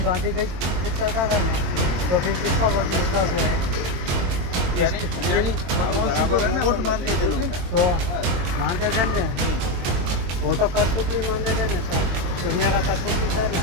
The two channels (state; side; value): late; left; 22 ms